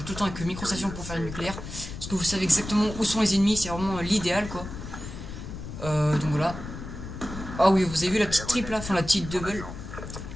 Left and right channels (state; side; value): noise; left; rumble, 10 dB below the sound